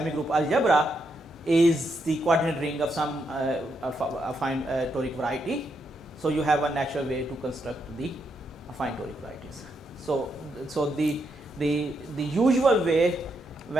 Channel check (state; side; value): normal; both; correlation 0.80